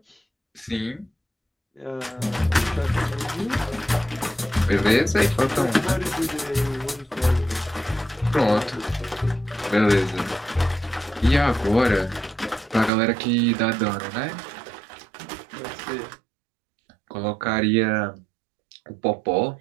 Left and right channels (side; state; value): left; drops out; at 12.9 s